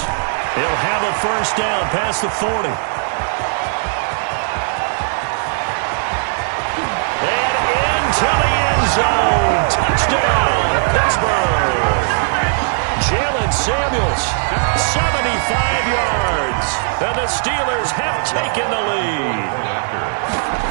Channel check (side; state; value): left; silent; digital silence